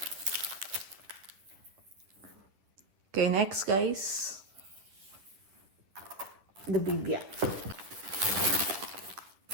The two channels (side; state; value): left; late; 10 ms